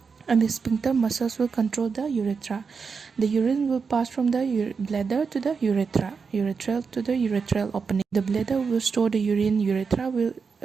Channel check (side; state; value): left; quieter; 5.4 dB